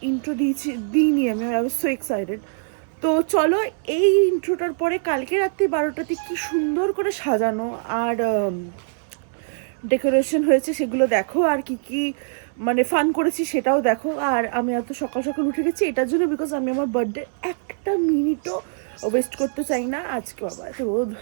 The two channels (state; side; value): silent; left; 60 dB below the other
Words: ইন্ট্রো দিইনি আমি। I was so excited. তো চলো এই ইন্ট্রোটার পরে কালকে রাত্রি 12টাতে কি সুন্দর করে সাজানো আর ডেকোরেশন হয়েছে সেগুলো দেখো, আর কি কি ফান করেছি সেটাও দেখো। আর আমি এত সকাল সকাল উঠে গেছি এটার জন্য, বিকজ আমি আমার বার্থডে একটা মিনিটও ওয়েস্ট করতে চাই না। আজকে বাবা এত রোদ,